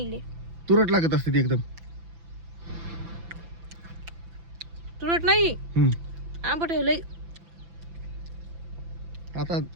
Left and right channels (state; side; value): late; left; 6.0 ms